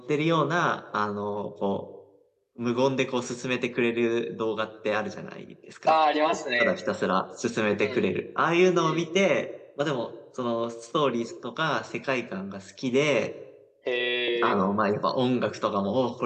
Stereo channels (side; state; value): both; identical; correlation 1.00